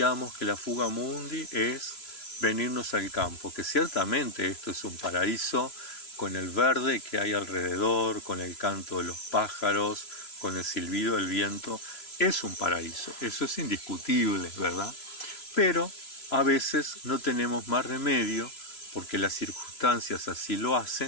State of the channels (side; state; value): right; late; 3.0 ms